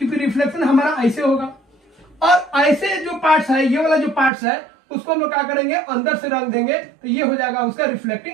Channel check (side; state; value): left; drops out; at 4.3 s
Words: रिफ्लेक्शन हमारा ऐसे होगा, और ऐसे जो पार्ट्स है ये वाला जो पार्ट्स है उसको हम लोग क्या करेंगे अंदर से रख देंगे, तो ये हो जाएगा उसका